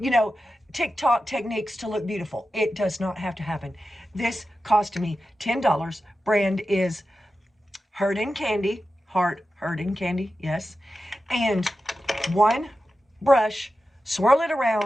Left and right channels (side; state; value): both; normal; correlation 0.92